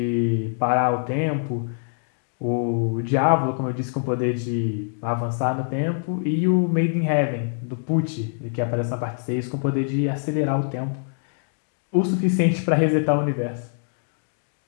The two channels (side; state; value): right; silent; digital silence